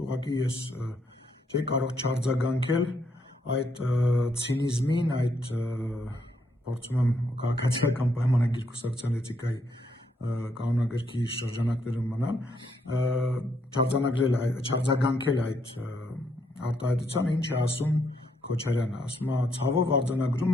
ուղղակի ես չէի կարող չարձագանքել այդ ցինիզմին, այդ փորձում եմ քաղաքացիական պայմանագիր կուսակցության էթիկայի կանոնագրքի շրջանակներում մնալ, չարձագանքել այդ արտահայտությանը, ինչ է ասում Քոչարյանը, ասում է, ցավով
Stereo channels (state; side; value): normal; both; correlation 0.74